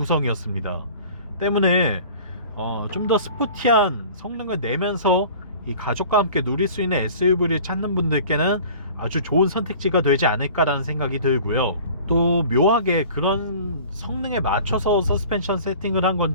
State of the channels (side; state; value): both; inverted; correlation -0.44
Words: 때문에 좀 더 스포티한 성능을 내면서 이 가족과 함께 누릴 수 있는 SUV를 찾는 분들께는 아주 좋은 선택지가 되지 않을까라는 생각이 들고요. 또 묘하게 그런 성능에 맞춰서 서스펜션 세팅을 한